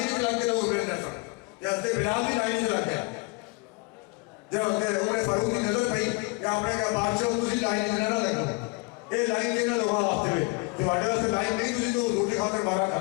سے لگ کے لوگ ابھرے نہ سن تے حضرت بلال بھی لائن سے لگ گیا جب حضرت عمر فاروق کی نظر پئی کہ آپ نے کہا بادشاہ تسی لائن سے نہ لگو اے لائن سے نہ لگا واسطے میں تواڈے واسطے لائن نہیں تسی تو حضور کی خاطر مارا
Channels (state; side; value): quieter; right; 28.9 dB